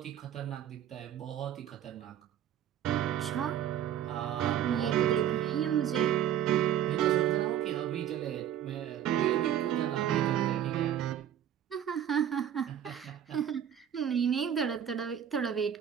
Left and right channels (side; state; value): left; quieter; 10.2 dB